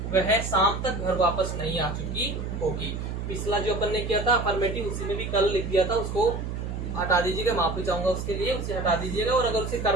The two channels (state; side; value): noise; right; hum, 5 dB below the sound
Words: वह शाम तक घर वापस नहीं आ चुकी होगी। पिछला जो अपन ने किया था अफर्मेटिव, उसी में भी कल लिख दिया था, उसको हटा दीजिएगा, माफी चाहूंगा उसके लिए, उसे हटा दीजिएगा। और अगर उसे